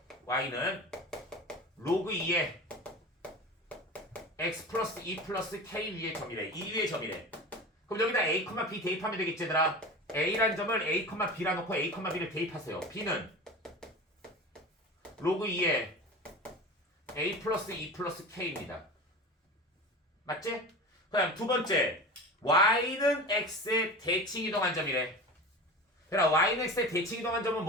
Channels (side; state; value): both; normal; correlation 0.32